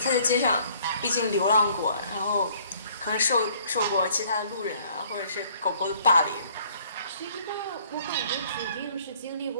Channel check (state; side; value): inverted; both; correlation -0.59